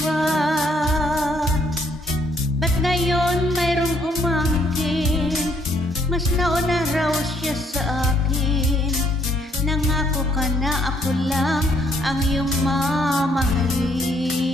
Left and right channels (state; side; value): normal; both; correlation 0.68